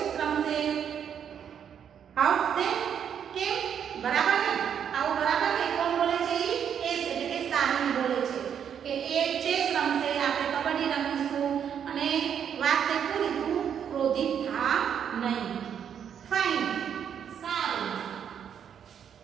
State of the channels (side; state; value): left; quieter; 8.3 dB